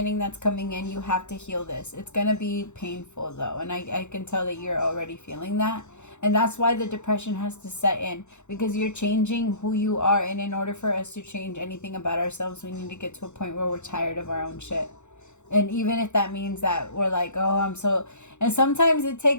that's coming in, you have to heal this. It's going to be painful though. And I can tell that you're already feeling that. And that's why the depression has to set in. Because you're changing who you are. And in order for us to change anything about ourselves, we need to get to a point where we're tired of our own shit. And even if that means that we're like, oh, I'm so... And sometimes it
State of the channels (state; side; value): late; right; 0.83 ms